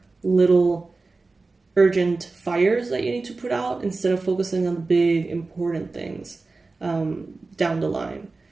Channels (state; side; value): quieter; left; 3.7 dB